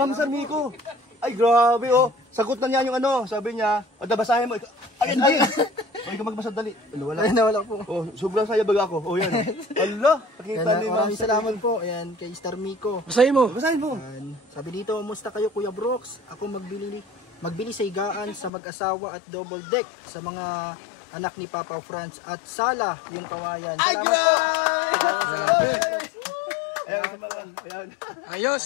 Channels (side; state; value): right; drops out; at 18.5 s